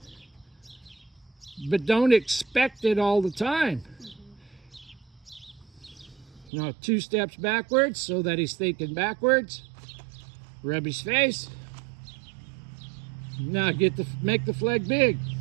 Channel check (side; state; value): left; drops out; at 6.5 s